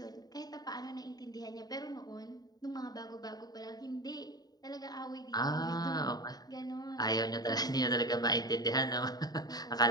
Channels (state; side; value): late; right; 0.19 ms